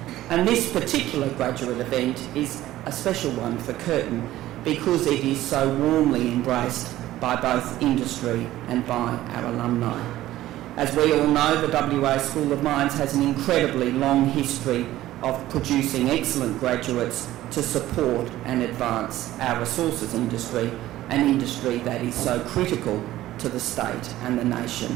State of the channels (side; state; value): left; quieter; 14.8 dB